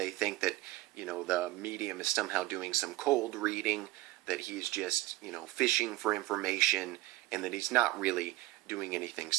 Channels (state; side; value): quieter; left; 18.1 dB